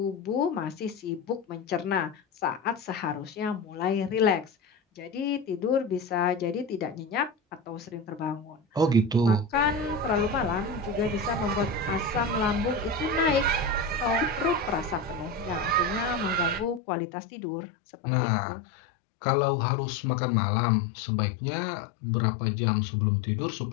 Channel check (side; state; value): right; drops out; at 16.8 s